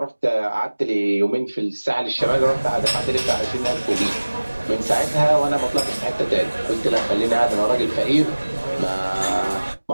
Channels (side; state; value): both; inverted; correlation -1.00